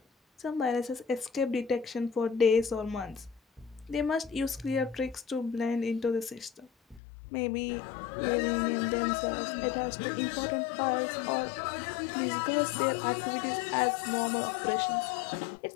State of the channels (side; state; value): right; drops out; at 7.0 s